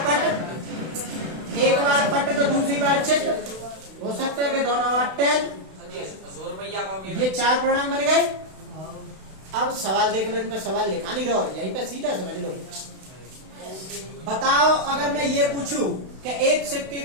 पट, एक बार पट तो दूसरी बार चित्त, हो सकता है कि दोनों बार टेल। ये 4 परिणाम बन गए। अब सवाल देख लो, इन पे सवाल लिखा नहीं रहो, यहीं पे सीधा समझ लो। बताओ अगर मैं ये पूछूं कि एक सिक्के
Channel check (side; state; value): left; late; 32 ms